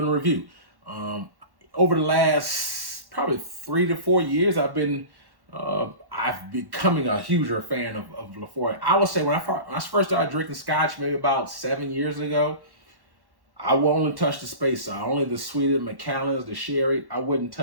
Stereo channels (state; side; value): late; left; 1.1 ms